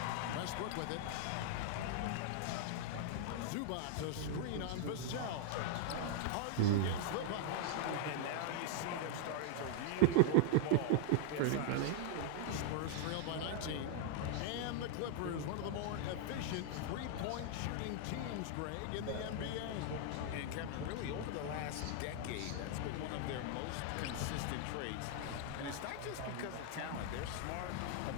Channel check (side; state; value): both; different; correlation -0.01